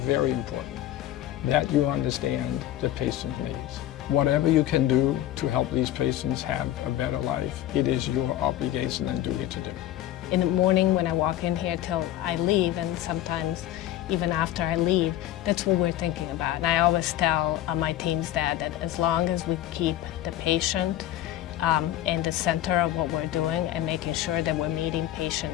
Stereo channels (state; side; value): quieter; right; 13.0 dB